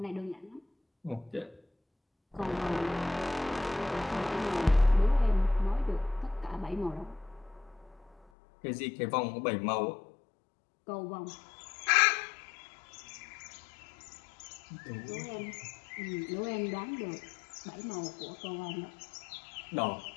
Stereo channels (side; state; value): right; drops out; at 8.2 s